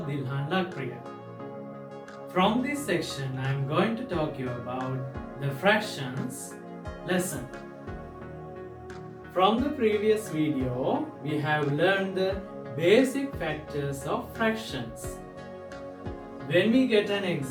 Dilhan Lakpriya. From this section I am going to talk you about the fractions lesson. From the previous video we have learned the basic factors of fractions. When we get an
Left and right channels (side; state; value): both; identical; correlation 1.00